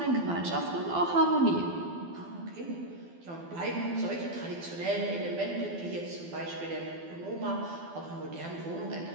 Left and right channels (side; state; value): left; late; 12 ms